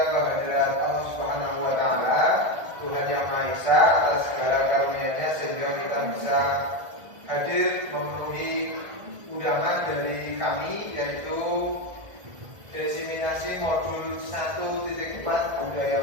Allah Subhanahu wa taala, Tuhan yang Maha Esa, atas segala karunia-Nya sehingga kita bisa hadir memenuhi undangan dari kami, yaitu diseminasi modul 1.4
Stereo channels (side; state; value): left; late; 1.6 ms